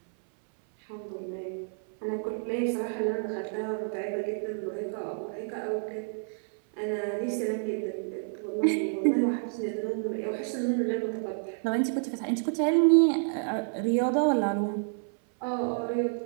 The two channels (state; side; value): silent; left; 58 dB below the other